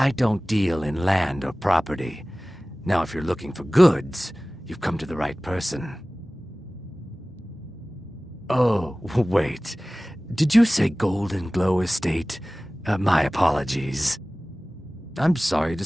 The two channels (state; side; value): normal; both; correlation 0.98